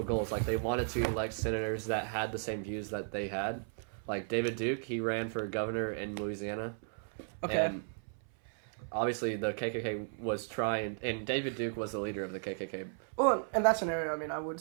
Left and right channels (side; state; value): left; silent; 55 dB below the other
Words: goals. Like they wanted to elect senators that had the same views that they had. Like David Duke, he ran for governor in Louisiana. Okay. And obviously, the KKK was trying, and David Duke was the leader of the KKK. Well, in that scenario, I mean, I would